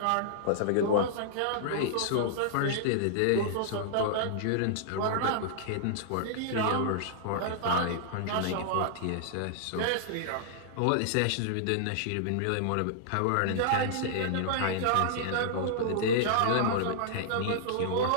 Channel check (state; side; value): different; both; correlation -0.01